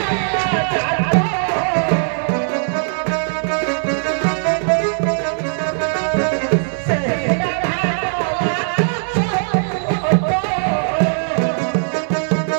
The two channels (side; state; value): left; silent; 67 dB below the other